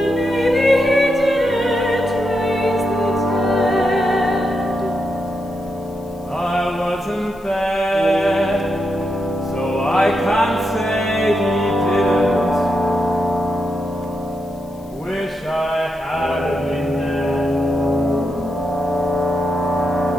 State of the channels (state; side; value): noise; left; hiss, 28 dB below the sound